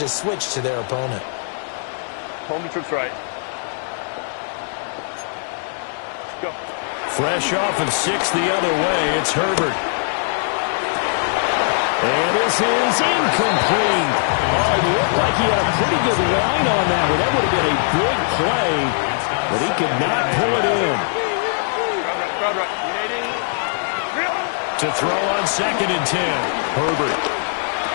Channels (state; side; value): silent; right; digital silence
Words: is switched to their opponent. Home trips right. Go. Fresh off of 6 the other way, it's Herbert. And this is incomplete. Oh, it looked like he had a pretty good line on that one. That would have been a big play, but he could not pull it in. To throw on 2nd and 10, Herbert.